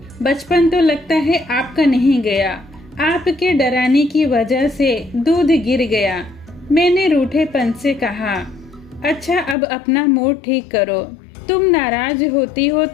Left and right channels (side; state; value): right; drops out; at 9.6 s